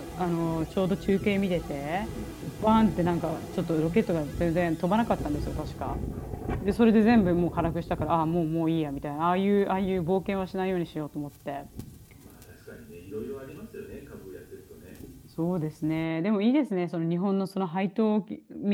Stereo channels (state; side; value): identical; both; correlation 1.00